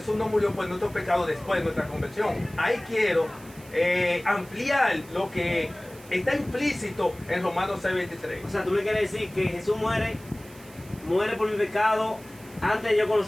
no murió por nuestros pecados después de nuestra conversión. Ahí quiero ampliar lo que está implícito en Romanos 6:23. O sea, tú me quieres decir que Jesús muere por mi pecado antes de yo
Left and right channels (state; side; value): noise; right; hiss, 22 dB below the sound